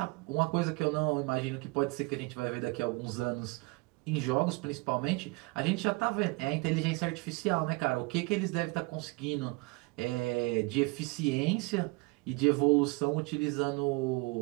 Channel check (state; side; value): quieter; left; 26.3 dB